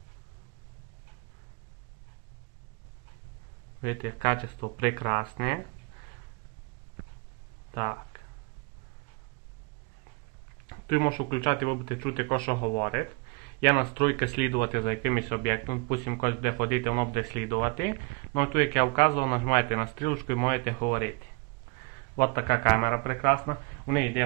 Видите, качество прекрасне. Так. Тут можу включати, ви будете чути, що говорить. Є настройки слідувати за якимось об'єктом. Допустим, когось буде ходити, воно буде слідувати. Ну тут, як я вказував, нажимаєте на стрілочку і можете говорити. Ось така камера прекрасна. У неї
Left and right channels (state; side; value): quieter; left; 29.4 dB